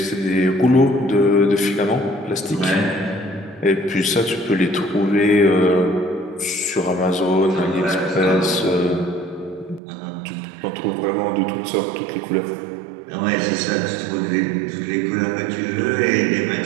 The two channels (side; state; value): left; drops out; at 9.8 s